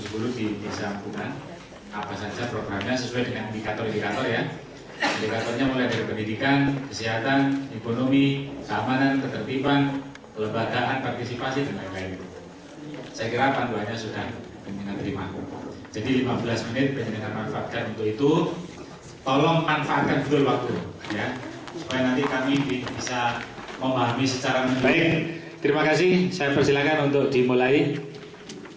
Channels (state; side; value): identical; both; correlation 1.00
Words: di Desa Bunga. Apa saja programnya sesuai dengan indikator-indikator ya. Indikatornya mulai dari pendidikan, kesehatan, ekonomi, keamanan, ketertiban, kelembagaan, partisipasi dan lain-lain. Saya kira panduannya sudah penjenengan terima. Jadi 15 menit penjenengan manfaatkan untuk itu. Tolong manfaatkan betul waktu ya, supaya nanti kami bisa memahami secara menyeluruh. Baik, terima kasih. Saya persilakan untuk dimulai.